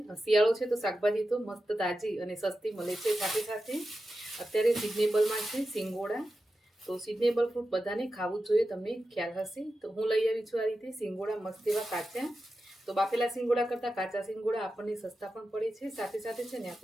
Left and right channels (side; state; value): both; normal; correlation 0.91